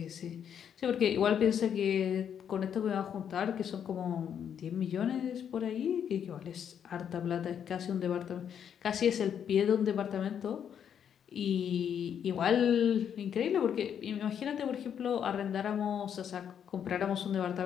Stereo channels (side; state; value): right; quieter; 8.5 dB